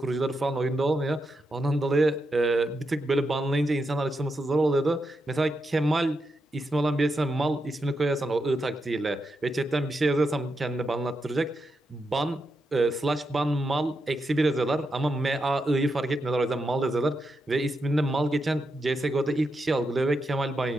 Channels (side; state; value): both; normal; correlation 0.85